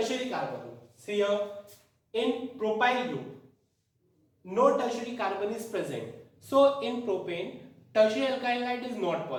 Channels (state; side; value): identical; both; correlation 1.00